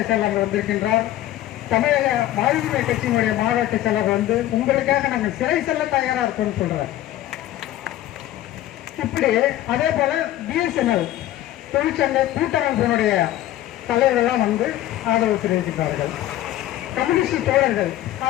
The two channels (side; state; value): right; quieter; 13.9 dB